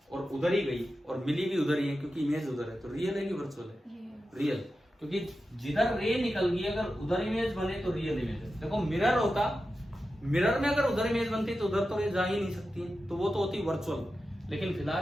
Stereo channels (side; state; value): both; normal; correlation 0.91